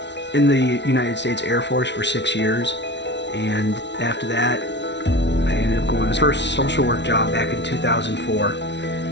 in the United States Air Force for 6 years, and after that I ended up going to my first social work job back in 2004,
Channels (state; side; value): late; right; 0.51 ms